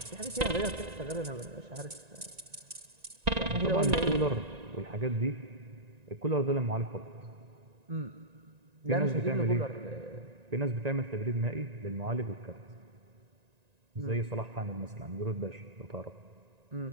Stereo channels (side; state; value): left; late; 1.9 ms